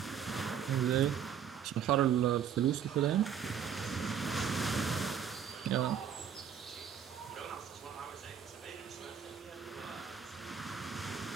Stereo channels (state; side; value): quieter; left; 8.2 dB